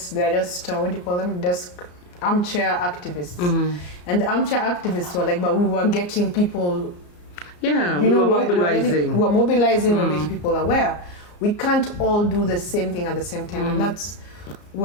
what do you call them? Desk armchair activists. And the armchair activists were like, but we were getting people. We were mobilizing. We're mobilizing, we're making people aware. We can't all do the same thing at the same time. And that's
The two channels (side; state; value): right; late; 34 ms